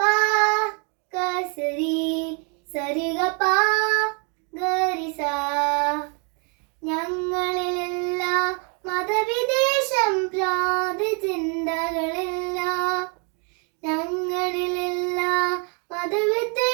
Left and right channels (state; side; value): quieter; left; 36.3 dB